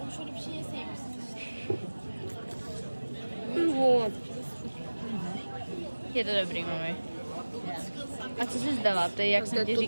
Je to dobrý, mami. A co jsi zdala ty? Jak jsem ti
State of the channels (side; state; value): both; inverted; correlation -1.00